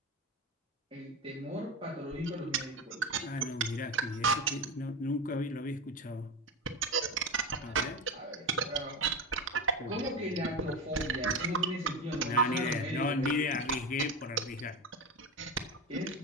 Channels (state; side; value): normal; both; correlation 0.21